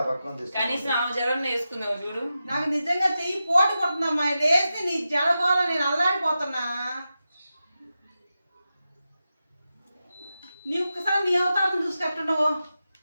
పక్కన తీసుకు. కనీసం ఆ జడన్న వేసుకుందావు చూడు. నాకు నిజంగా చెయ్యి పోటు కొడుతుందమ్మా. లేస్తే నీ జడగోళ నేను అల్లాడిపోతున్నా. నీ ఒక్కసారి నీ అవతారం చూసుకెట్టున్నావు.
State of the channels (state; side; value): inverted; both; correlation -0.91